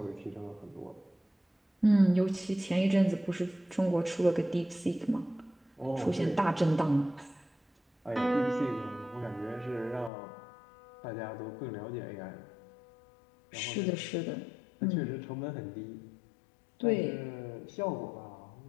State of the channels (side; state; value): right; drops out; at 10.1 s